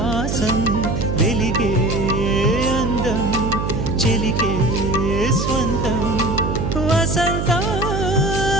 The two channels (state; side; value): noise; right; hum, 1 dB below the sound